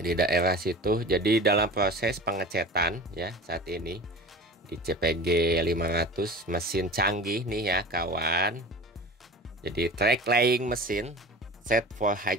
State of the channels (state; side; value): normal; both; correlation 0.37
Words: daerah situ. Jadi dalam proses pengecetan ya saat ini di CPG 500 mesin canggih nih ya kawan. Jadi track laying mesin set for